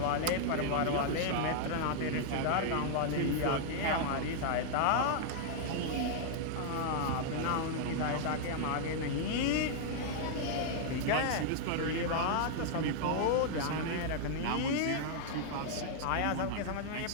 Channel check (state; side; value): different; both; correlation -0.01